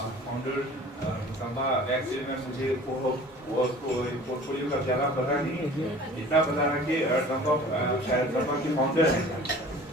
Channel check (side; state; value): both; normal; correlation 0.45